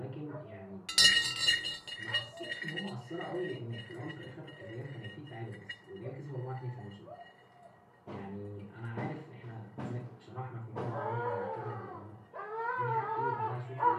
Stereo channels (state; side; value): identical; both; correlation 1.00